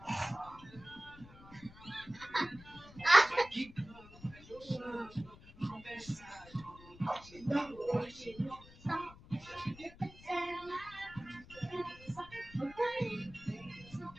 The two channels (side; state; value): left; noise; rumble, 19 dB below the sound